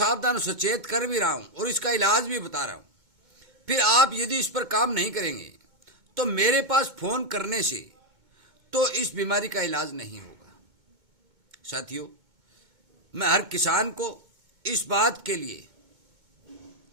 और सचेत कर भी रहा हूँ और इसका इलाज भी बता रहा हूँ। फिर आप यदि इस पर काम नहीं करेंगे तो मेरे पास फोन करने से तो इस बीमारी का इलाज नहीं होगा। साथियों, मैं हर किसान को इस बात के लिए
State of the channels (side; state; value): left; late; 2.2 ms